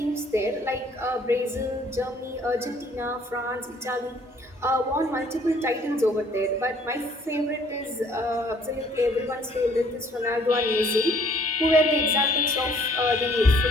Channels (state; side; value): normal; both; correlation 0.59